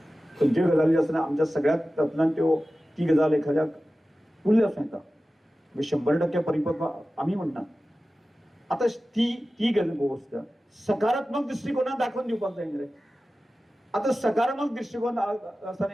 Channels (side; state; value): both; normal; correlation 0.95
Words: खंयच्यो गजाली आसतना आमच्या सगळ्यात तातूंतल्यान त्यो ती गजाल एखाद्याक उरली आसूं येता. 100% परिपक्व आमी म्हणना. आतां ती गोश्ट सकारात्मक दृश्टिकोनांत दाखोवन दिवपाक जाय न्ही रे. आतां सकारात्मक दृश्टिकोन आसा